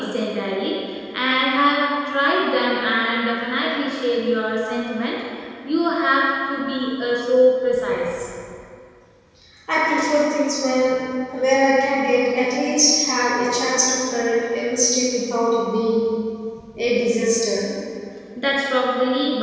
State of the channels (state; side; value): identical; both; correlation 1.00